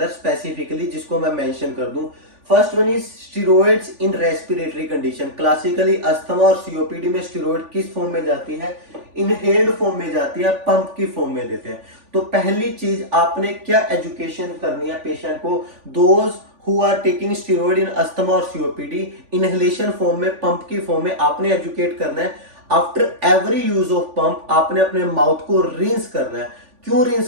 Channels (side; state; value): left; late; 3.5 ms